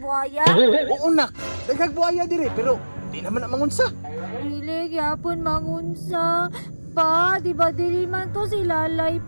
Oo nak, daghag buhaya diri pero di naman na mangunsa. Dili gyapon mangunsa. Pa, di ba dili man to si Lalay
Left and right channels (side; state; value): both; inverted; correlation -1.00